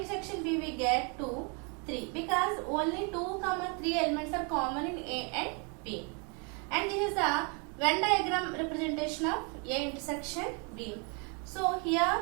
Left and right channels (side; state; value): left; quieter; 34.8 dB